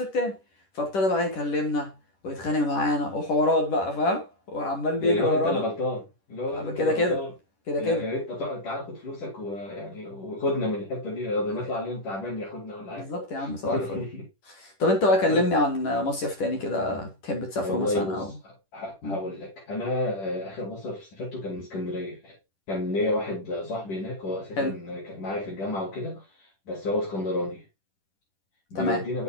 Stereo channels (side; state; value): right; late; 10 ms